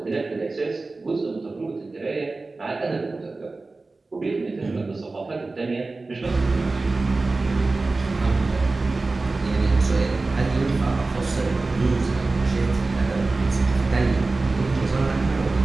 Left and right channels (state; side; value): quieter; left; 3.5 dB